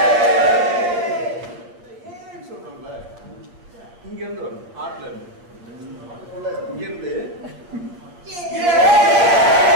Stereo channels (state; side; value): late; left; 8.5 ms